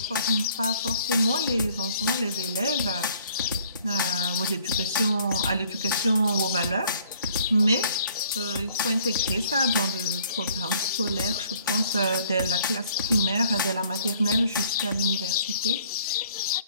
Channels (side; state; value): both; inverted; correlation -0.59